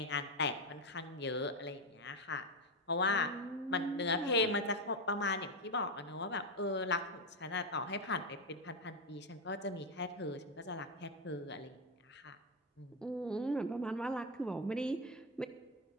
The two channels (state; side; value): normal; both; correlation 0.08